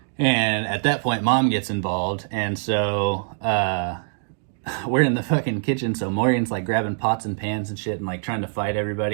and at that point, Mom gets involved, and so we're in the fucking kitchen, so Morgan's like grabbing pots and pans and shit and like trying to fight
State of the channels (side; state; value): left; silent; digital silence